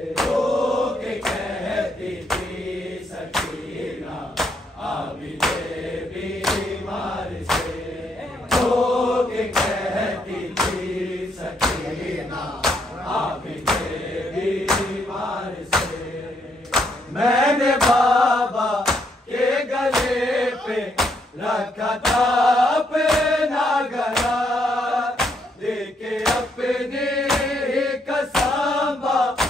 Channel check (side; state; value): both; normal; correlation 0.74